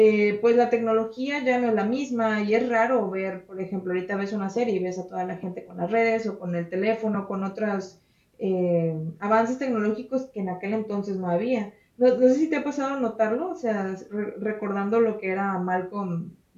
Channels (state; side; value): identical; both; correlation 1.00